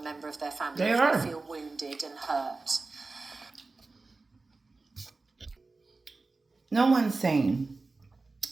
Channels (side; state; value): left; quieter; 3.7 dB